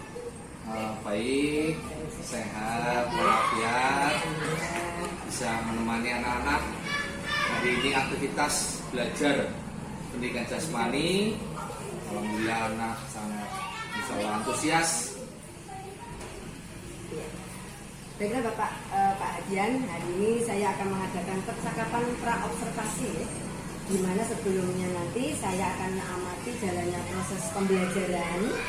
baik, sehat, walafiat, bisa menemani anak-anak. Hari ini aktivitas belajar pendidikan jasmani. Alhamdulillah anak sangat antusias. Baiklah Pak Hadian, hari ini saya akan mengadakan percakapan pra-observasi, di mana sebelumnya nanti saya akan mengamati jalannya proses pembelajaran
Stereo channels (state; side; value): identical; both; correlation 1.00